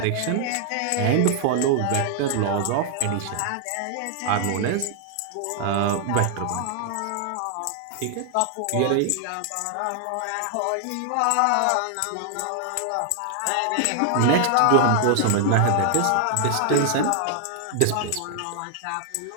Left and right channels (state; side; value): different; both; correlation 0.00